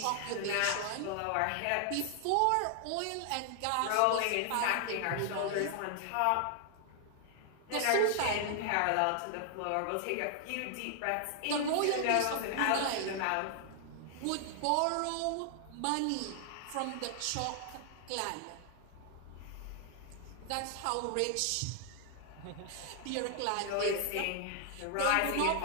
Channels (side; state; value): both; different; correlation 0.00